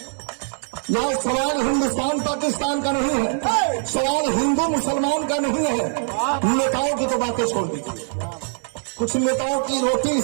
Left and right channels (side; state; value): left; silent; digital silence